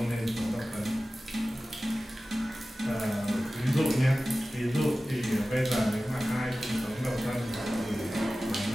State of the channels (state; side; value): normal; both; correlation 0.96